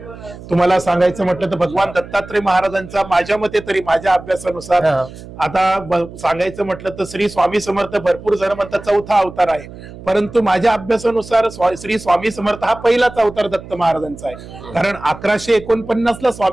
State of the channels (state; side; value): noise; right; hum, 16 dB below the sound